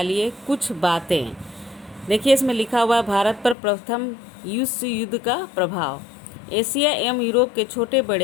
कुछ बातें। देखिए इसमें लिखा हुआ है भारत पर प्रथम विश्व युद्ध का प्रभाव। एशिया एवं यूरोप के छोटे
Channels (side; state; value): right; drops out; at 3.6 s